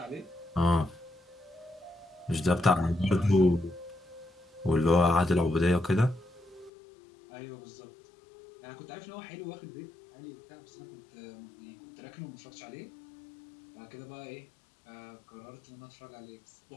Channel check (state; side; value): drops out; right; at 6.7 s